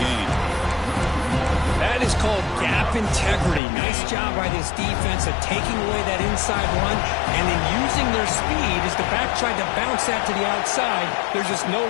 That is called gap integrity. Nice job by this defense of taking away that inside run and then using their speed as the back tried to bounce that to the outside. There's just no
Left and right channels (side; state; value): right; drops out; at 3.6 s